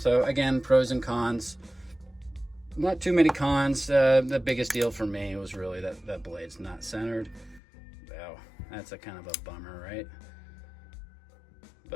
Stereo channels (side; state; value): right; drops out; at 7.6 s